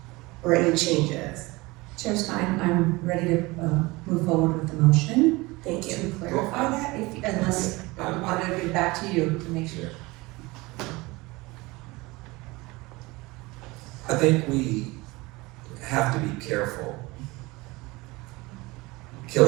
or any changes. Chair Stein, I'm ready to move forward with the motion. Thank you. To clarify that, unless I want to get back to you to make sure. I think we have to be careful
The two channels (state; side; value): quieter; left; 22.6 dB